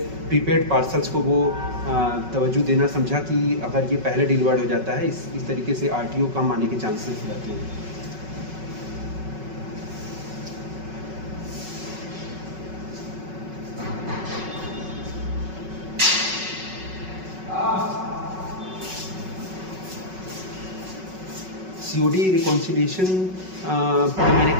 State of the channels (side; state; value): left; late; 5.4 ms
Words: प्रीपेड पार्सल्स को वो तवज्जो देना समझा कि अगर ये पहले डिलीवर्ड हो जाता है, इस तरीके से आरटीओ कम आने के चांसेस रहते हैं। सीओडी रिकॉन्सिलिएशन पे मैंने